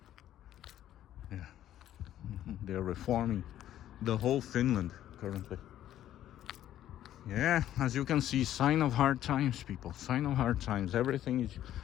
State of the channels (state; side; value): quieter; right; 12.1 dB